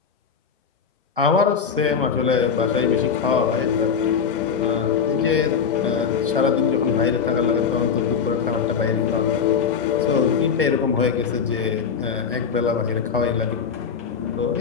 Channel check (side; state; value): right; quieter; 6.5 dB